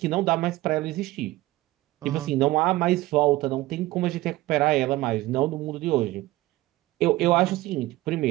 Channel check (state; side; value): quieter; left; 18.1 dB